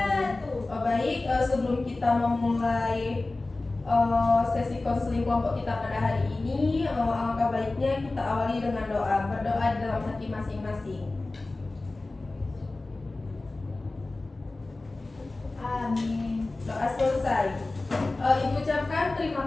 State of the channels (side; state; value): right; quieter; 3.1 dB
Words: Baik, sebelum kita memulai sesi konseling kelompok kita pada hari ini, alangkah baiknya kita awali dengan doa. Berdoa di dalam hati masing-masing. Amin. Doa selesai. Ibu ucapkan terima